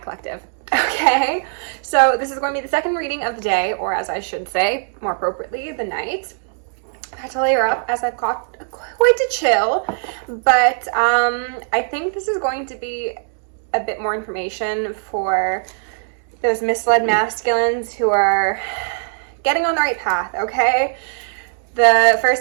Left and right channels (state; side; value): silent; left; digital silence